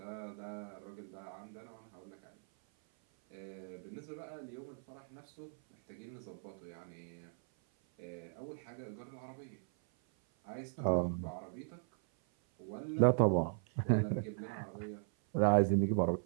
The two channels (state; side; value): silent; left; 52 dB below the other